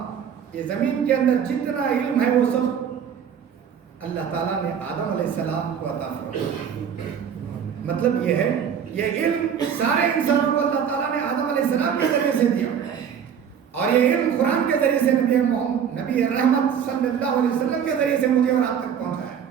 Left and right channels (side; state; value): left; quieter; 8.0 dB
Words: یہ زمین کے اندر جتنا علم ہے وہ سب اللہ تعالیٰ نے آدم علیہ السلام کو عطا فرمایا. مطلب یہ ہے یہ علم سارے انسانوں کو اللہ تعالیٰ نے آدم علیہ السلام کے ذریعے سے دیا اور یہ علم قرآن کے ذریعے سے نبی رحمت صلی اللہ علیہ وسلم کے ذریعے سے مجھے اور آپ تک پہنچا ہے.